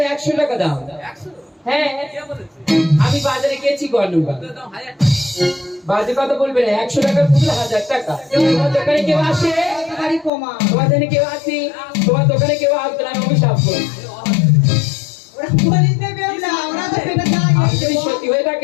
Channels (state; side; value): drops out; right; at 10.3 s